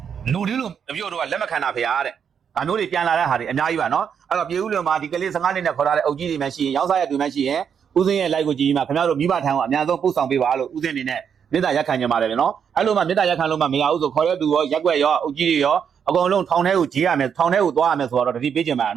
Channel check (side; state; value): left; quieter; 7.5 dB